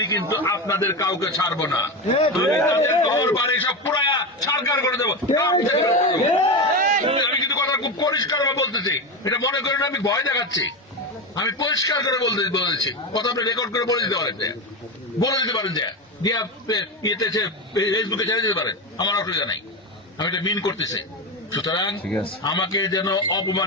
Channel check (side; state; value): both; normal; correlation 0.18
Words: কিন্তু আপনাদের কাউকে ছাড়বো না। ঘর বাড়ি সব পুরায়া সরকার করে দেবো। আমি কিন্তু কথা খুব পরিষ্কার বলতেছি, এটা মনে করেন আমি ভয় দেখাচ্ছি। আমি পরিষ্কার করে বলেছি, কথা আপনি রেকর্ড করে বলে দিতে পারেন, যে ফেসবুকে ছেড়ে দিতে পারেন, আমার অসুবিধা নাই। আমি এটা মিন করতেছি। সুতরাং আমাকে যেন